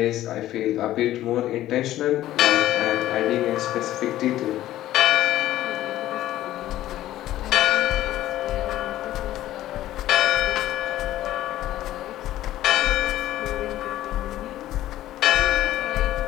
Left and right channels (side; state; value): right; quieter; 14.0 dB